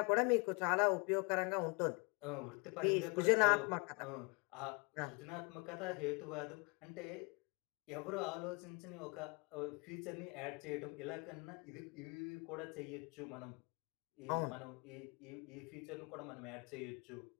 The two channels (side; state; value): right; quieter; 31.4 dB